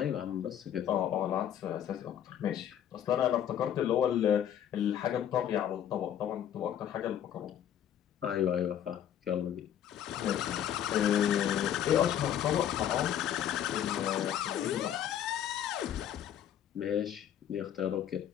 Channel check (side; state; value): right; quieter; 10.1 dB